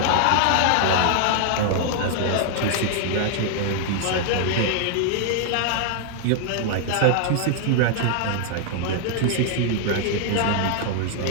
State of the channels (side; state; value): both; different; correlation 0.00